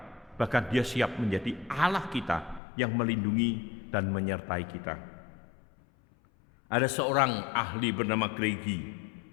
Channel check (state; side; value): drops out; right; at 2.6 s